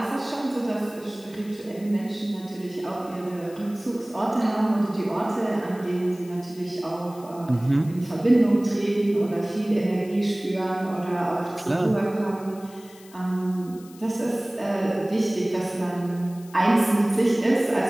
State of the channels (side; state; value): left; noise; hiss, 23 dB below the sound